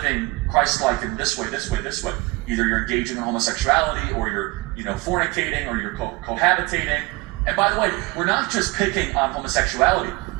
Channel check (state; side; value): quieter; left; 24.5 dB